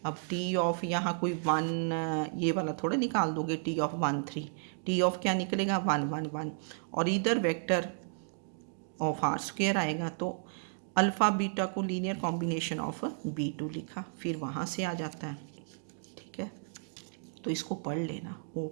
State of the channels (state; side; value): silent; left; digital silence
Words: अब टी ऑफ यहाँ कोई 1 ये वाला थोड़ा निकाल दोगे, टी ऑफ 1 3, टी ऑफ क्या निकलेगा 1 1 1, और इधर वेक्टर ऑफ आर स्क्वायर आएगा, तो अल्फ़ा बीटा को लीनियर कॉम्बिनेशन ऑफ b2 लिखा, फिर वहाँ से आ जाता है, ठीक है। तो इसको पढ़ लेना।